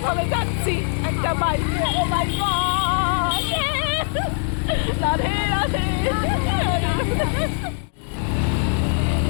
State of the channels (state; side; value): silent; right; digital silence